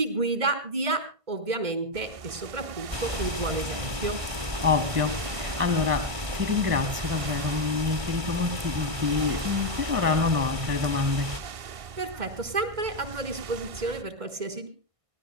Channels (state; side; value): late; left; 1.6 ms